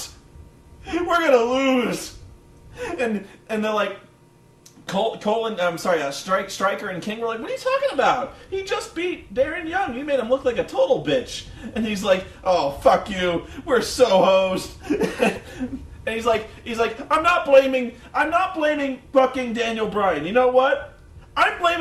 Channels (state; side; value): identical; both; correlation 1.00